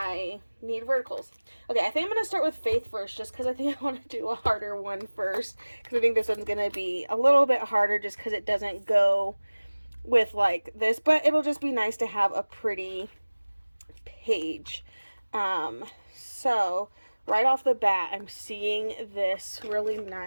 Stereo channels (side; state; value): both; inverted; correlation -1.00